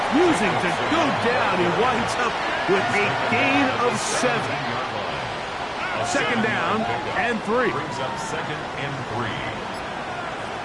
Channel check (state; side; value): identical; both; correlation 1.00